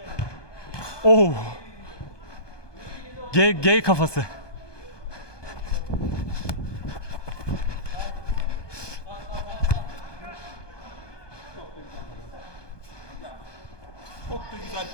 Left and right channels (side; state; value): right; late; 1.2 ms